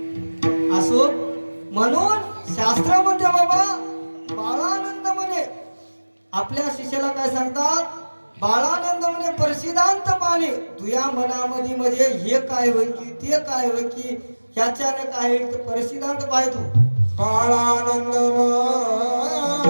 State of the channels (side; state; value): both; inverted; correlation -1.00